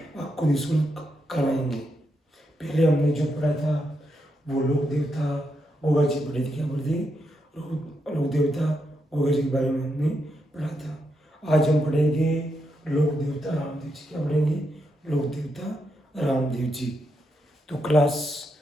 निःशुल्क करवाएंगे। पहले हमने जो पढ़ा था वो लोक देवता गोगा जी पढ़ी थी, क्या बोलते लोक देवता गोगा जी के बारे में हमने पढ़ा था। आज हम पढ़ेंगे लोक देवता रामदेव जी। क्या पढ़ेंगे? लोक देवता रामदेव जी। तो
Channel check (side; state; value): both; normal; correlation 0.82